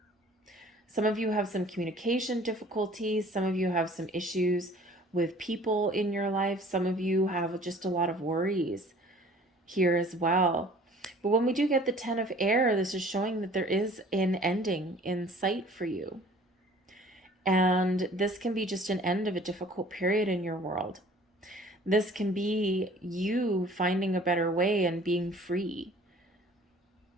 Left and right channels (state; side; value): normal; both; correlation 0.50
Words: Some of you have some communication difficulties. Some of you have some issues with people in your life. Some of you have just a lot of worries here as well. But when we do get the 10 of air, this is showing that there is an ending in sight for you. And this can be just an end of a difficult period in your world. This can be you finding a better way and being free.